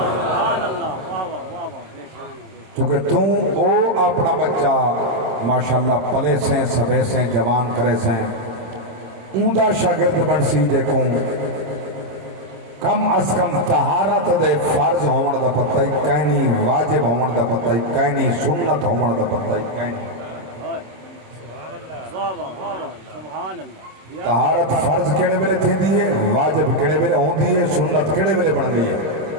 چونکہ تم او اپنا بچہ ماشاءاللہ پلے سے سبے سے جوان کرے سے اوندا شاگرد بن سی دیکھوں کم از کم طہارت دے فرض ہون دا پتہ ہی کہیں واجب ہون دا پتہ ہی کہیں سنت ہون دا پتہ ہی کہیں طہارت فرض کیڑے ویلے تھی دیئے واجب کیڑے ویلے ہون دیئے سنت کیڑے ویلے بن دیئے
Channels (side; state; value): left; late; 27 ms